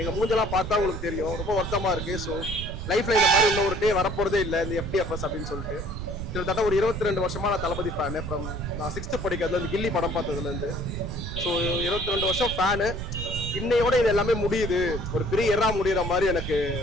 மூஞ்செல்லாம் பார்த்தா உங்களுக்கு தெரியும், ரொம்ப வருத்தமாக இருக்குது. ஸோ லைஃப்பில் இந்த மாதிரி இன்னும் ஒரு டே வரப்போகிறதே இல்லை இந்த FDFS அப்படின்னு சொல்லிட்டு. கிட்டத்தட்ட ஒரு 22 வருஷமா நான் தளபதி ஃபேனு. நான் 6th படிக்கிறதுலேருந்து கில்லி படம் பார்த்ததுலேருந்து. ஸோ 22 வருஷம் ஃபேனு. இன்னையோட இது எல்லாமே முடியுது, ஒரு பெரிய எரா முடிகிற மாதிரி எனக்கு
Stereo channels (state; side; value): noise; right; rumble, 6 dB below the sound